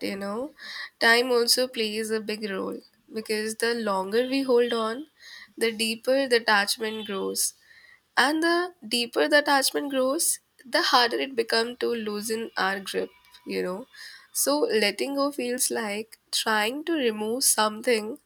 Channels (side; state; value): both; identical; correlation 1.00